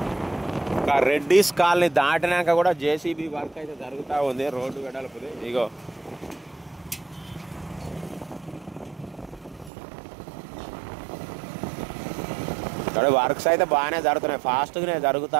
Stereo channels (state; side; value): drops out; left; at 9.7 s